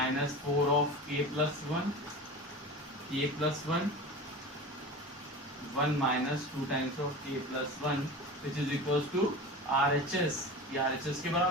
4 of k plus 1 k plus 1 1 minus 2 times of k plus 1 which is equals to RHS। ये RHS के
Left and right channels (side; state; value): both; normal; correlation 0.32